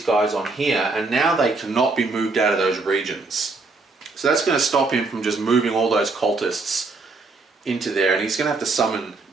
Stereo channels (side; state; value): left; quieter; 3.8 dB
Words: guys on here, and now they cannot be moved out of those regions. So that's going to stop him from just moving all those cultists into there, and he's going to have to summon